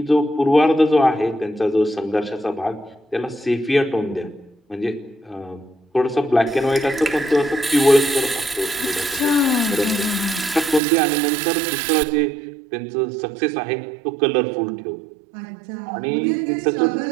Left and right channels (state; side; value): drops out; left; at 10.8 s